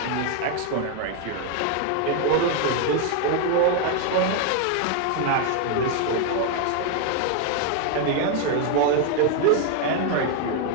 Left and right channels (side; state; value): both; different; correlation 0.01